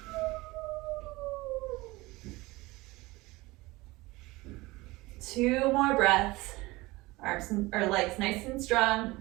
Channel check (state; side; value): quieter; left; 21.2 dB